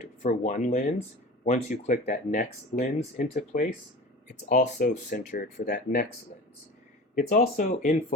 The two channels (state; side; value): normal; both; correlation 0.36